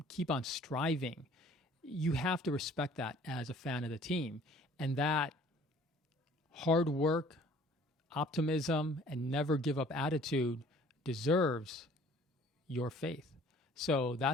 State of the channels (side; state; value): both; normal; correlation 0.54